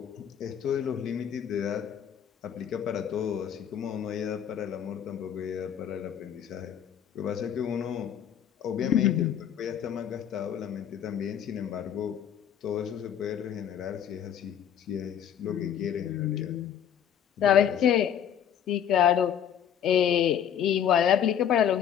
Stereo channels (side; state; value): right; quieter; 9.2 dB